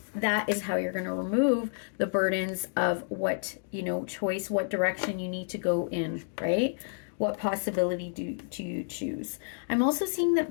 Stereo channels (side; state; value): right; silent; digital silence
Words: that is how you're going to remove the burdens of what, you know, choice, what direction you need to go in, right? What possibility do you choose? I'm also seeing that